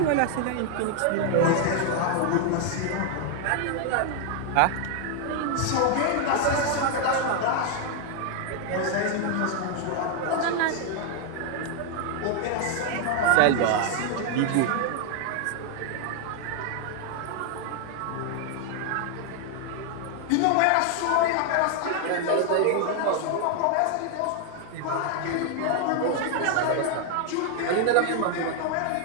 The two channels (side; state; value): both; different; correlation 0.00